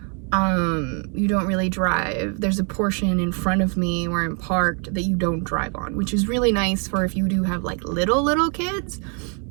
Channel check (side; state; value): left; quieter; 37.9 dB